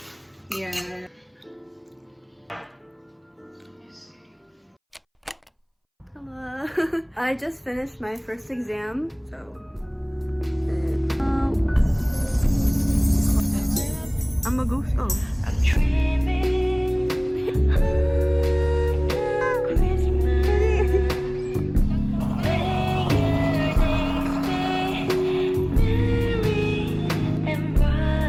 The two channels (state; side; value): identical; both; correlation 1.00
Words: Yeah. Hello. I just finished my first exam, so. I'm a ghost. Oh. I'm dreaming.